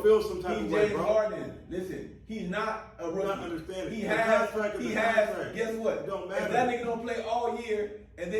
feel some type he's of way, James bro. Harden. Listen, he's not a rookie. not understanding. He The has. contract is He the has. contract. Guess what? It don't If matter. that nigga don't play all year and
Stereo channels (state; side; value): identical; both; correlation 1.00